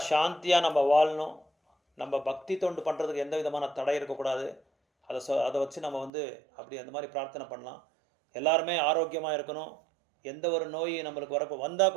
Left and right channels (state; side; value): drops out; left; at 6.1 s